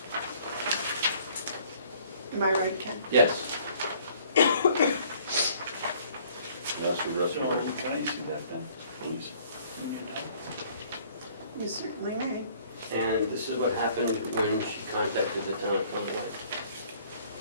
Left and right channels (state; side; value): inverted; both; correlation -0.58